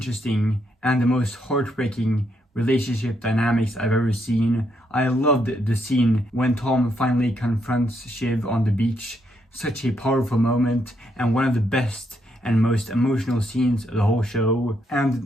and the most heartbreaking relationship dynamics I've ever seen. I loved the scene when Tom finally confronts Shiv on the beach. Such a powerful moment, and one of the best and most emotional scenes of the whole show.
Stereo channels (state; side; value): normal; both; correlation 0.77